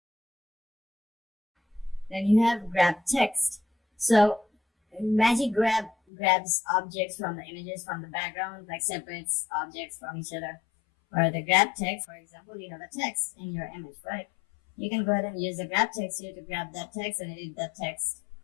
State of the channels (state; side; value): drops out; right; at 5.9 s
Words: Then you have grab text. So magic grab grabs objects from the images from the background, like separates objects from each other. Or the grab text, for example, you have a text in your image, right? You can go ahead and use the grab text here to grab that text and edit that text.